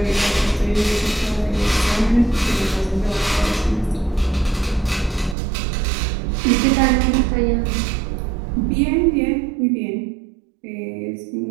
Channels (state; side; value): drops out; left; at 5.4 s